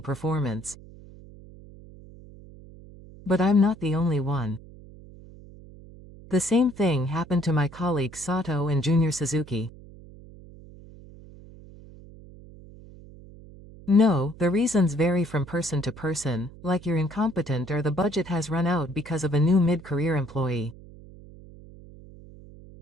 But I'm not the only one. The same thing happened to my colleagues Sato and Junior Suzuki. No, the reasons vary from person to person, like you're incompetent or the budget has run out because of a new mid-career employee.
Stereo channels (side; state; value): right; noise; hum, 19 dB below the sound